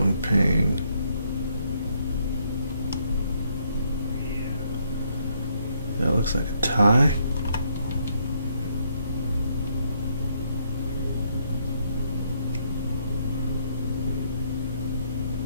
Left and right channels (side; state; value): both; inverted; correlation -0.72